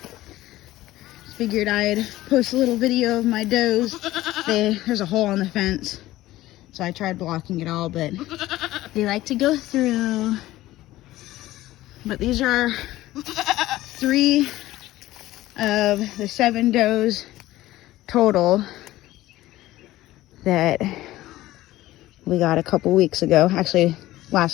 Figured I'd post a little video of my does. There's a hole in the fence, so I tried blocking it all, but they like to go through. But these are 3 of the 7 does total that we got a couple weeks ago, actually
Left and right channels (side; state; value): right; quieter; 16.2 dB